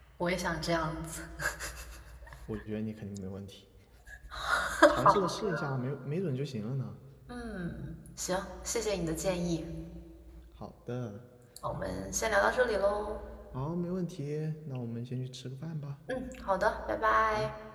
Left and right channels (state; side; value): identical; both; correlation 1.00